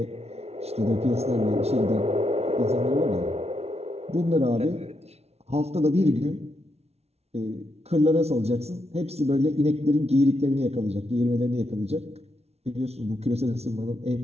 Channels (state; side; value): late; left; 0.31 ms